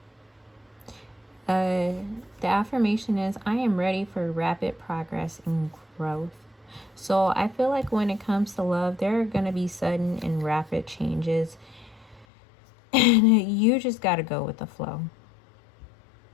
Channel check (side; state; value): right; drops out; at 12.2 s